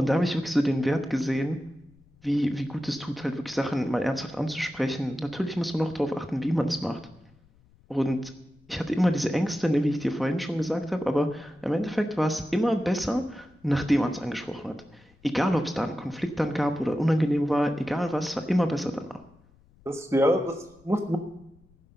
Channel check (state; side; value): noise; left; rumble, 29 dB below the sound